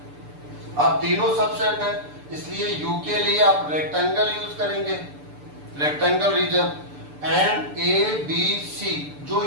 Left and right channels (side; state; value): left; late; 6.8 ms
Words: अब तीनों सबसेट है, इसलिए यू के लिए आप रेक्टेंगल यूज करेंगे, rectangle region. And A B C जो